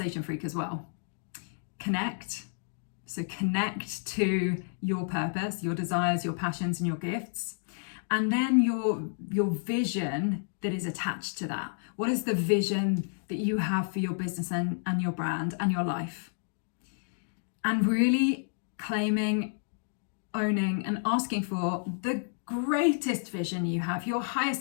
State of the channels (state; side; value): silent; right; digital silence